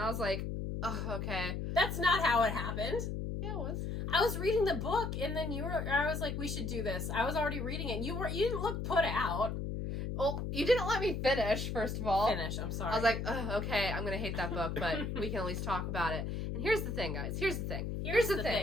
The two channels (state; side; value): noise; left; hum, 3 dB below the sound